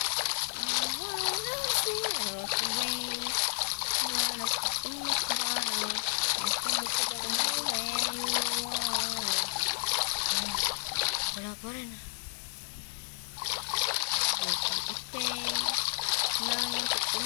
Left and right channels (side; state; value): right; silent; digital silence